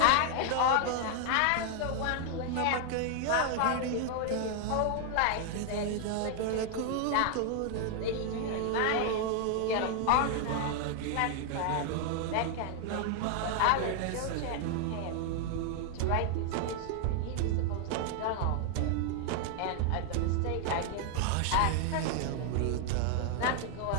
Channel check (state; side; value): different; both; correlation 0.00